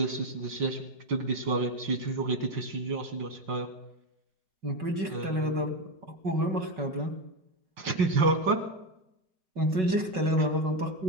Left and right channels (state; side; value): late; left; 5.3 ms